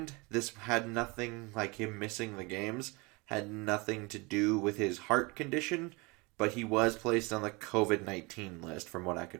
this had nothing, like him missing the games, had nothing to do with his heart condition, but he was placed on the COVID-19 list from what I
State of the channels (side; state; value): left; quieter; 26.8 dB